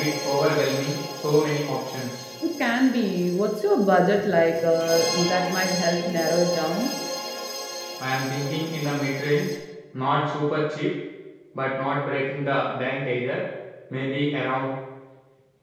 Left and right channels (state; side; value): identical; both; correlation 1.00